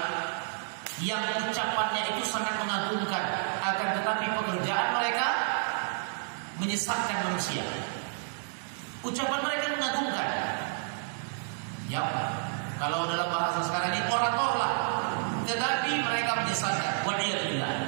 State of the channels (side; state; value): left; silent; 58 dB below the other